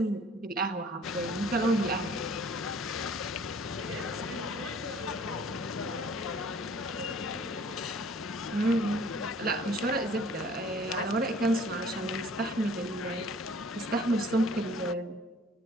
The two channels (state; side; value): normal; both; correlation 0.53